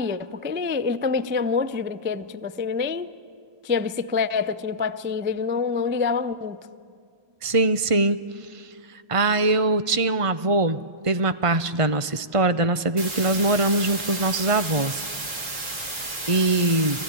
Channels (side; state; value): left; late; 1.5 ms